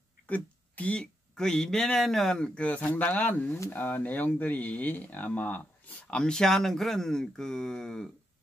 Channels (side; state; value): both; normal; correlation 0.83